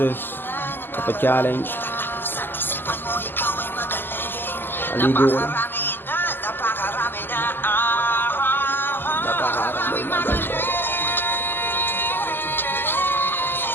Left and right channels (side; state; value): right; late; 0.095 ms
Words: kapag-challenge. Aligo ko lang. Napakarami magaling.